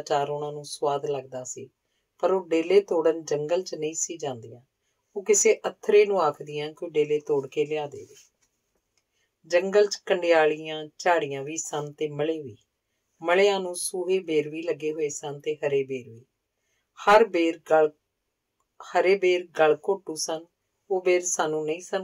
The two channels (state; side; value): identical; both; correlation 1.00